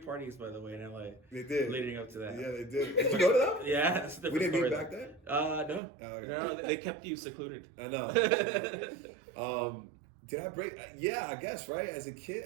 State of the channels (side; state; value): left; drops out; at 5.8 s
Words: parties, by the way, in LA. They did. Leading up to that. Yeah, they did. Did you go to them? Yeah, it's a We different didn't meet story, back then? No. Oh, okay. No, they kept you secluded. I know. Did I break? Yeah, I guess, right? As a kid,